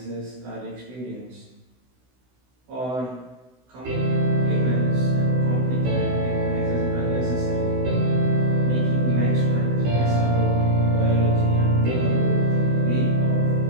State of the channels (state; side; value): late; left; 16 ms